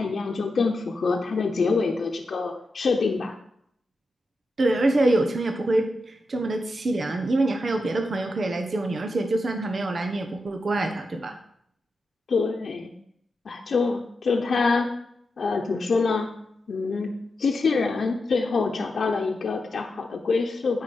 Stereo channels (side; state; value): both; normal; correlation 0.88